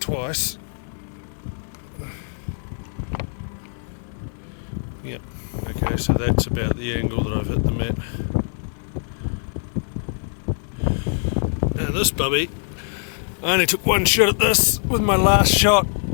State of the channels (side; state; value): right; silent; digital silence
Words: twice. Yep, okay, so that's about the angle that I've hit them at. This bubby, I only took one shot at this with my last shot.